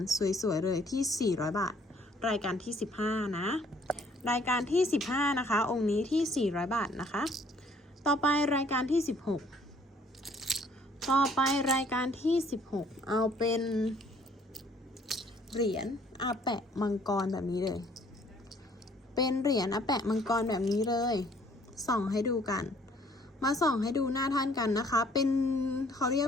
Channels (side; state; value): both; normal; correlation 0.60